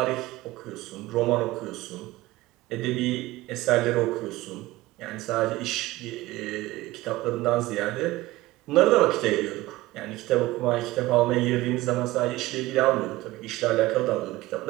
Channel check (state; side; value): quieter; left; 18.4 dB